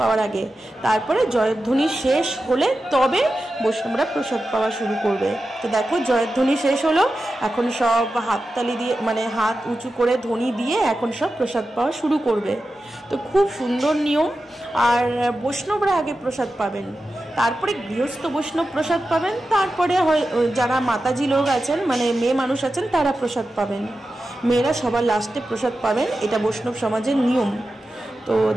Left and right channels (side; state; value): both; normal; correlation 0.92